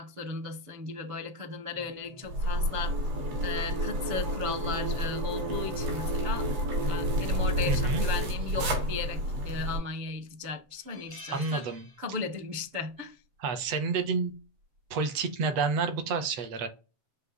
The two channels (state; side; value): late; left; 7.9 ms